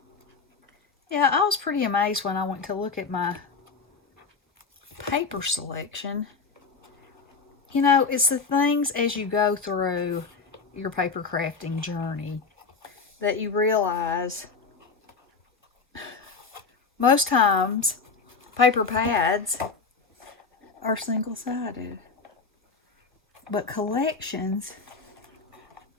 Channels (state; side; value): quieter; right; 4.7 dB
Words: Yeah, I was pretty amazed when I went to look at my paper selection. You know, it's the things as you go through your paper crafting journey that you realize most times paper pads are single-sided, but collections